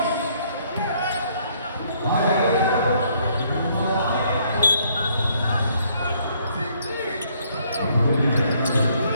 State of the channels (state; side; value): inverted; both; correlation -0.66